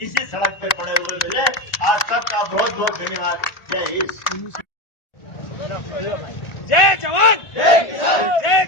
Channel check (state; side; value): late; right; 1.4 ms